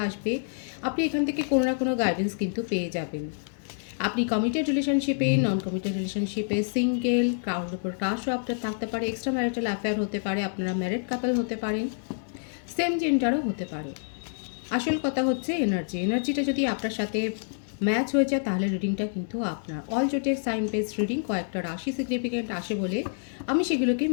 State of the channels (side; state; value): right; silent; digital silence